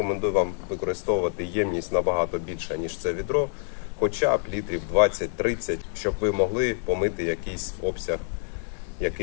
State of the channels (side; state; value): right; silent; 60 dB below the other